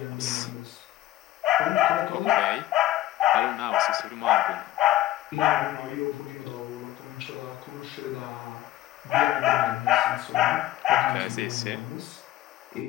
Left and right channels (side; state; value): right; quieter; 14.9 dB